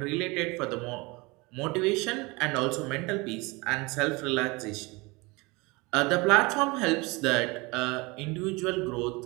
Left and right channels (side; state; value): left; quieter; 25.3 dB